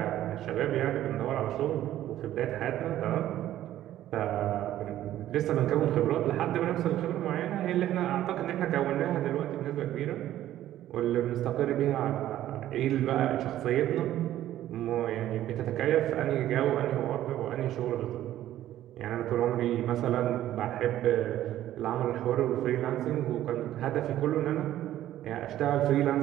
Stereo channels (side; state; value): left; quieter; 13.0 dB